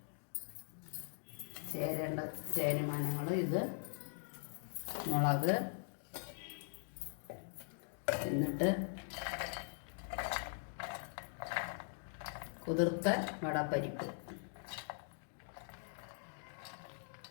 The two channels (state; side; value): silent; right; digital silence